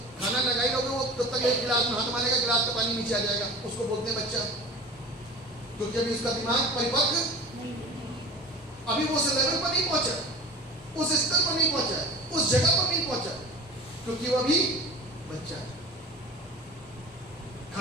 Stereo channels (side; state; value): both; normal; correlation 0.37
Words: खाना लगाई लोगे वो तब तक एक गिलास में हाथ मारेगा, गिलास का पानी नीचे आ जाएगा, उसको बोलते हैं बच्चा, क्योंकि अभी उसका दिमाग परिपक्व, अभी वो उस लेवल पर नहीं पहुंचा, उस स्तर पर नहीं पहुंचा, उस जगह पर नहीं पहुंचा, क्योंकि वो अभी बच्चा है।